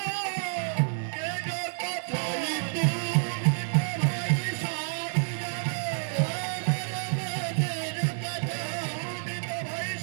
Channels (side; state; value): left; silent; 59 dB below the other